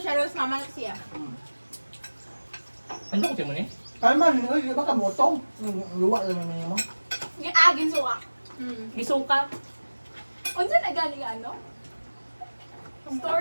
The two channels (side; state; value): both; inverted; correlation -1.00